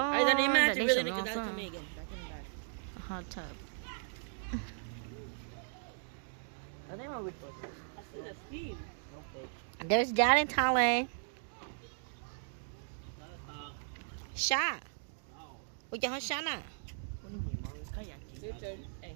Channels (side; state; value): left; silent; digital silence